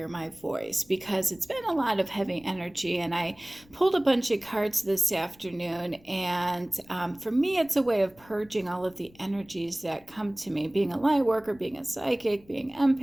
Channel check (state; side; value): noise; left; rumble, 27 dB below the sound